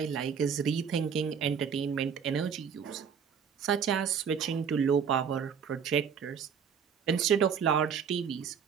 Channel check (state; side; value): quieter; left; 7.1 dB